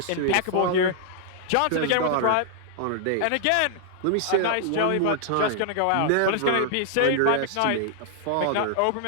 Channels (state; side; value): different; both; correlation -0.01